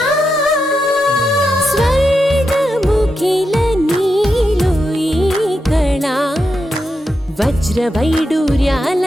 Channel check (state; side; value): normal; both; correlation 0.86